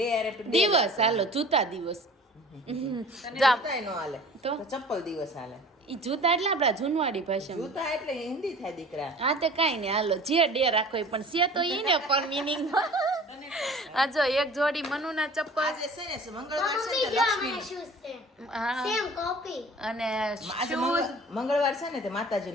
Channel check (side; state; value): both; normal; correlation 0.45